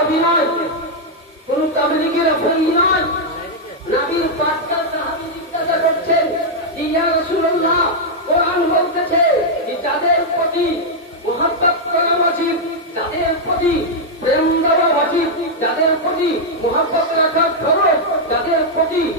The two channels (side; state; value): both; normal; correlation -0.03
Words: নয়, কোন তাবলীগের আফ্রিদি নয়। নবীর পাঁচটা সাহাবী জিজ্ঞাসা করছেন, ইয়া রাসূলুল্লাহ, কোরআন বলতেছে যে যাদের প্রতি মুহাব্বত করা ওয়াজিব, যাদের প্রতি প্রেম দেওয়া ওয়াজিব, যাদের প্রতি মুহাব্বত রাখা ফরজ, যাদের প্রতি